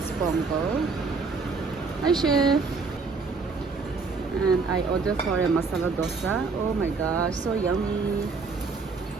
pongal. Hi chef. And I ordered for a masala dosa. Oh my gosh, so yummy.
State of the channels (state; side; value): quieter; left; 4.4 dB